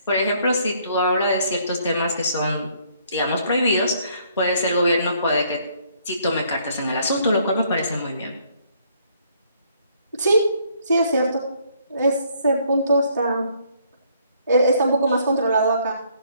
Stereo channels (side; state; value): both; inverted; correlation -0.66